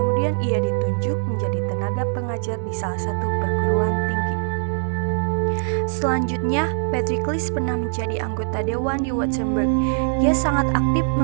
ia ditunjuk menjadi tenaga pengajar di salah satu perguruan tinggi. Selanjutnya, Pericles pernah menjadi anggota dewan di Württemberg. Ia sangat aktif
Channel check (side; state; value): left; silent; digital silence